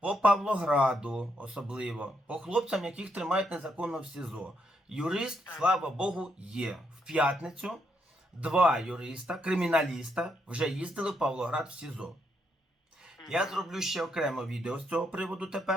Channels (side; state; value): both; normal; correlation 0.77